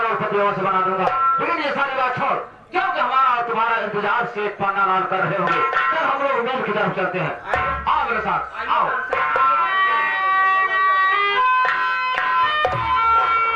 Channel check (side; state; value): both; identical; correlation 1.00